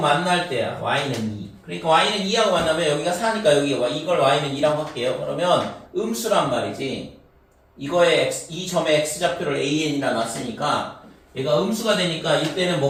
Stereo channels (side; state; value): both; identical; correlation 1.00